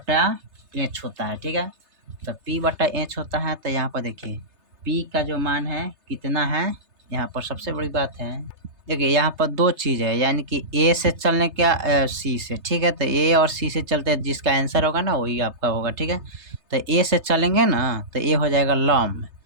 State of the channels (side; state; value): left; late; 3.3 ms